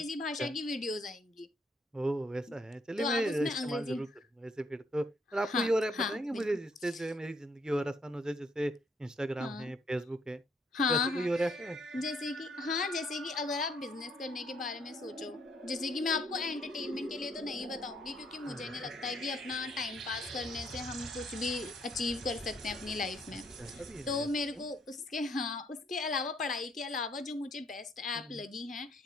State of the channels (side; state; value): both; normal; correlation 0.69